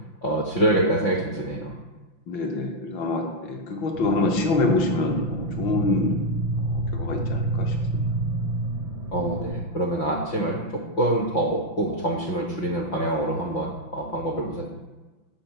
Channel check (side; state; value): right; late; 5.9 ms